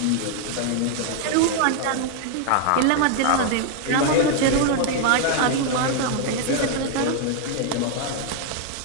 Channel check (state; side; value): different; both; correlation 0.00